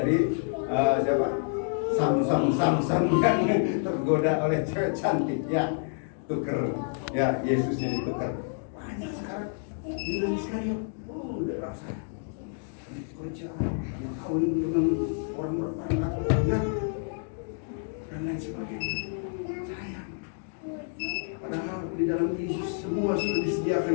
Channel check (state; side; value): silent; right; 59 dB below the other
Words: siapa? Samsung yang tergoda oleh cewek cantik ya. Tuker ya, Yesusnya ditukar. Banyak sekarang Yudas Iskariot. Udah rasa kerja yang kawin dengan orang berpangkat. di dalam Yesus semua sudah